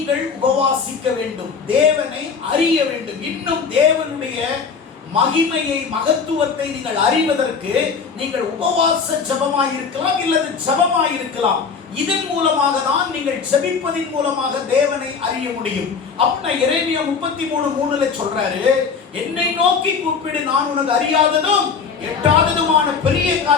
உபவாசிக்க வேண்டும். தேவனை அறிய வேண்டும். இன்னும் தேவனுடைய மகிமையை, மகத்துவத்தை நீங்கள் அறிவதற்கு நீங்கள் உபவாச ஜெபமாய் இருக்கலாம், இல்லது ஜெபமாய் இருக்கலாம். இதன் மூலமாக தான் நீங்கள் ஜெபிப்பதின் மூலமாக தேவனை அறிய முடியும். அப்படின்னா எரேமியா 33:3 சொல்றாரு, என்னை நோக்கி கூப்பிடு, நான் உனக்கு அறியாததும் எட்டாததுமான பெரிய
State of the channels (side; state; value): right; quieter; 5.6 dB